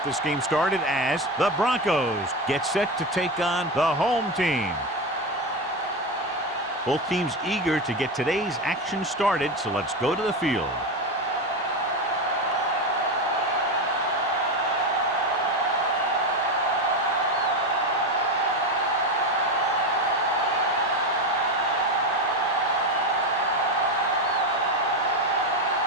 this game started as the Broncos get set to take on the home team. Both teams eager to get today's action started, so let's go to the field.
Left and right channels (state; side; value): normal; both; correlation 0.16